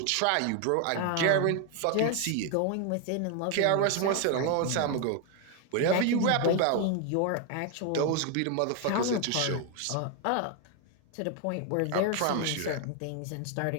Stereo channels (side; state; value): both; different; correlation 0.01